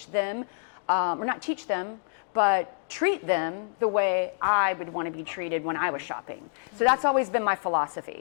them, or not teach them, but treat them the way I would want to be treated when I was shopping. So that's always been my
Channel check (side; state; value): right; silent; digital silence